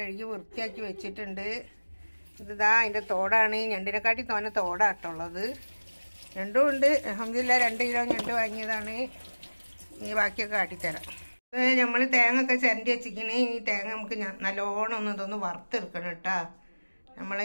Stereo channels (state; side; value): inverted; both; correlation -1.00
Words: വൃത്തിയാക്കി വെച്ചിട്ടുണ്ട്. ഇതാ അതിൻ്റെ തോടാണ്. ഞണ്ടിനെക്കാട്ടി തോന്നെ തോടാട്ടുള്ളത്. ഞണ്ടും ഉണ്ട്. അൽഹംദുലില്ലാ 2 കിലോ ഞണ്ട് വാങ്ങിയതാണ്. ഇനി ബാക്കിയൊക്കെ കാട്ടിത്തരാം. നമ്മൾ തേങ്ങ ഒക്കെ ചിരണ്ടി വെച്ചിരിക്കണേ. ഈ തേങ്ങ നമുക്ക് നല്ലോണം ഇതൊന്ന് വറുത്തെടുക്കണം കേട്ടോ